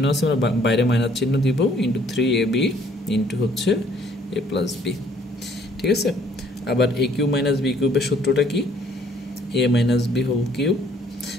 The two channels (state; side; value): normal; both; correlation 0.61